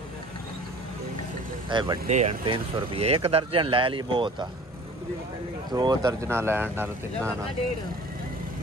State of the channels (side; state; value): both; normal; correlation 0.46